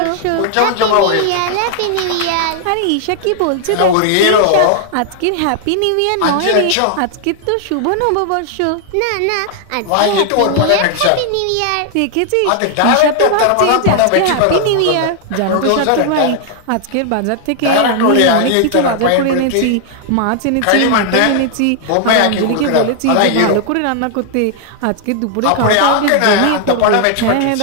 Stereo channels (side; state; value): both; different; correlation 0.00